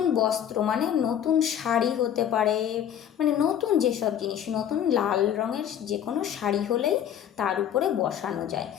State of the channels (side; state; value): right; quieter; 9.8 dB